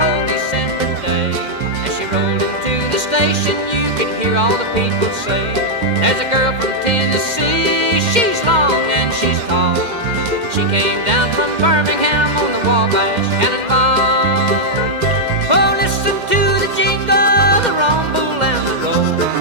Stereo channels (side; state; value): left; late; 2.1 ms